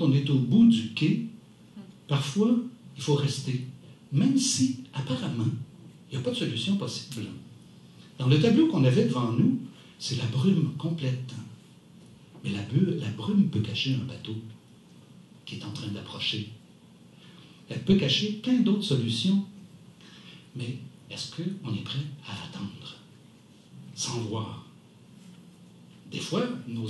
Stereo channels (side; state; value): both; identical; correlation 1.00